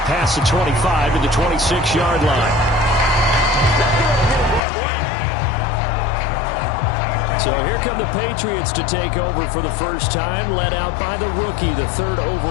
the 25 to the 26-yard line. So here come the Patriots to take over for the first time, led out by the rookie, the third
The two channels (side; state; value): right; drops out; at 4.6 s